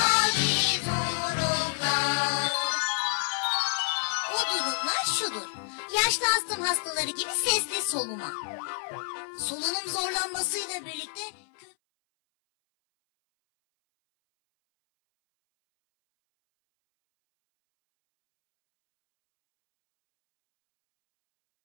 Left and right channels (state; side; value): silent; right; 59 dB below the other